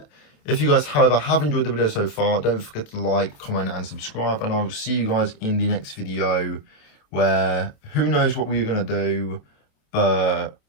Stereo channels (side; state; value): right; late; 28 ms